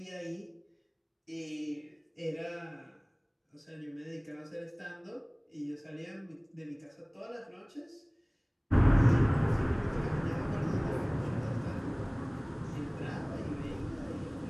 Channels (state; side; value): identical; both; correlation 1.00